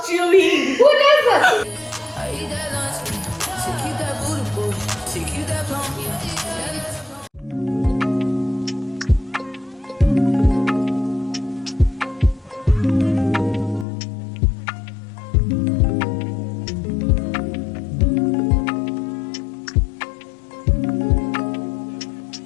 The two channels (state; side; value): drops out; right; at 13.9 s